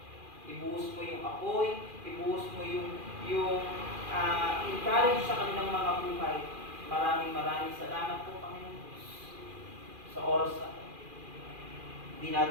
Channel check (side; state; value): left; late; 2.4 ms